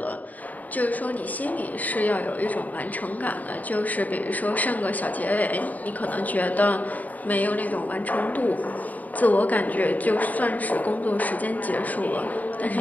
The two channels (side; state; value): right; late; 0.077 ms